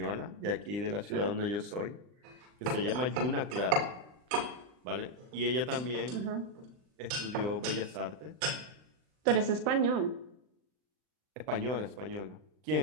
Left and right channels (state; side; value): late; left; 39 ms